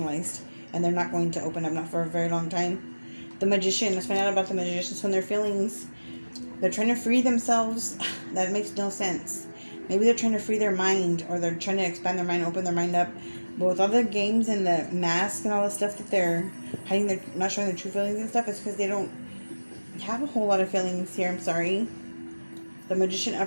and they're not going to open up, not for a very long time. The Magician. Let's find out about the Magicians from their feelings. They're trying to free themselves. That makes no sense. Maybe they're trying to free their mind, or they're trying to expand their mind, open their mind up. But with all the games and the mask and all the stuff that they're hiding, they're not showing their true feelings and stuff, it's because they don't have a whole lot of feelings here. I'm sorry. The Magician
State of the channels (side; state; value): both; inverted; correlation -1.00